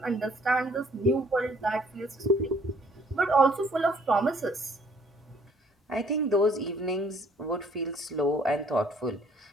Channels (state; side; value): normal; both; correlation 0.60